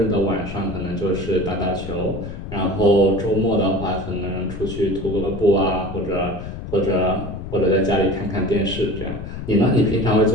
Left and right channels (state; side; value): noise; left; rumble, 9 dB below the sound